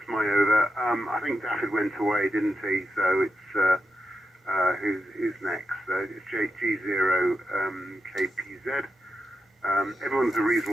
my over. I think Daffyd went away, didn't he? So it's who's next? It's G0 KPZ. Everyone's a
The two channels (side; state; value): both; normal; correlation 0.86